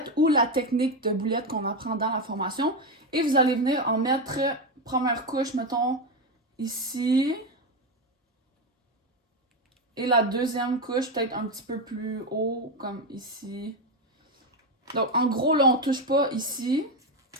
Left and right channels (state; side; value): normal; both; correlation 0.11